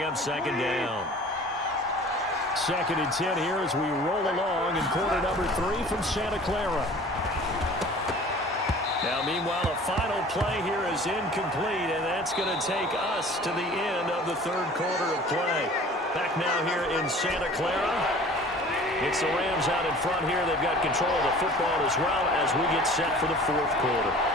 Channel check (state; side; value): normal; both; correlation 0.46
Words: up 2nd down. 2nd and 10 here as we roll along in quarter number 3 from Santa Clara. Now, meanwhile, a final play here is incomplete, and that's going to take us to the end of the 3rd quarter of play. Back now here in Santa Clara. It's the Rams out in front here. They've got control of the football as well as we get set for the 4th quarter.